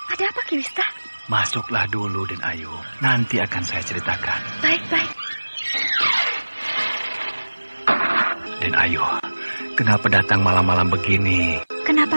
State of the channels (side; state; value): both; inverted; correlation -1.00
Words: Ada apa Ki Wista? Masuklah dulu Den Ayu, nanti akan saya ceritakan. Baik. Den Ayu, kenapa datang malam-malam begini? Kenapa